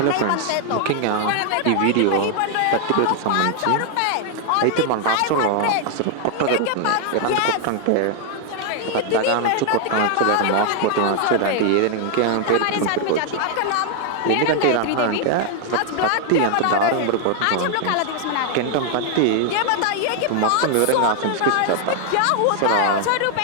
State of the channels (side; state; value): both; different; correlation 0.00